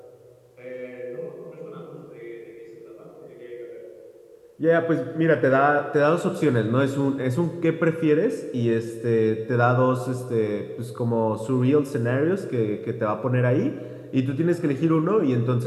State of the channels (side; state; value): both; identical; correlation 1.00